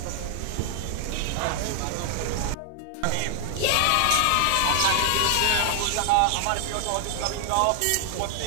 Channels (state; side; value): different; both; correlation 0.00